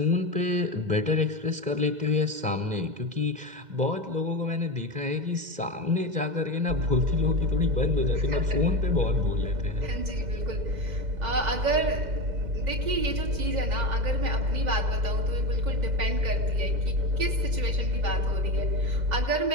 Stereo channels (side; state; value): left; late; 2.0 ms